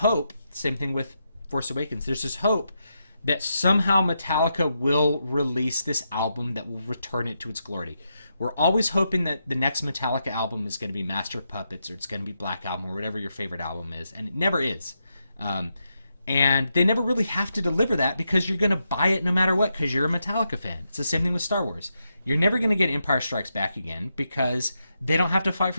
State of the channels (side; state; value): both; inverted; correlation -0.84